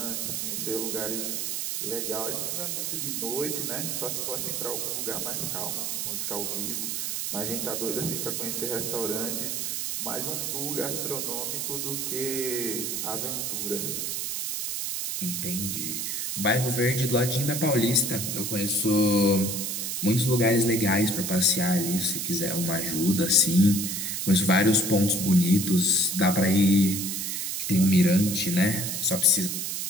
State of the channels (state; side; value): noise; right; hiss, 2 dB below the sound